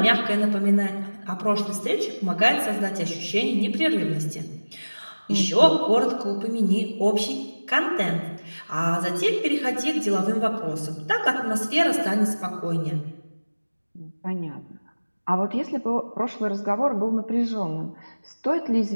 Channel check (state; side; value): inverted; both; correlation -1.00